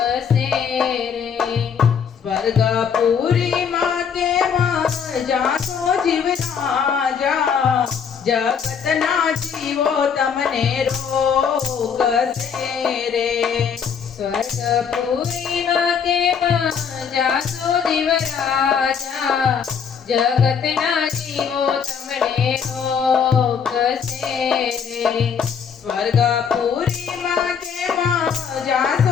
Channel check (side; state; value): right; quieter; 7.0 dB